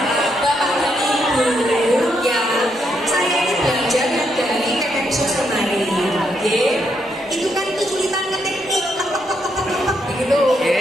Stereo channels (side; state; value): both; normal; correlation 0.78